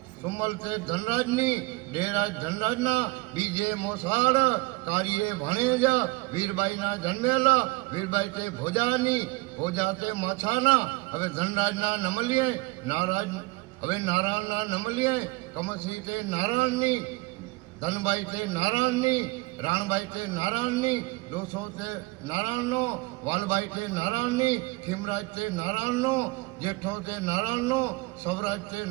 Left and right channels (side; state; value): left; quieter; 24.1 dB